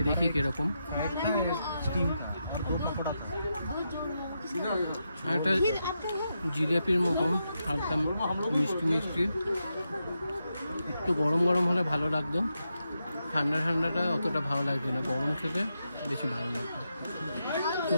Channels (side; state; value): both; inverted; correlation -0.85